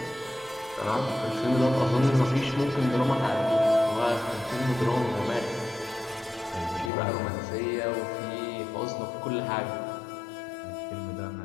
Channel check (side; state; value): right; drops out; at 6.9 s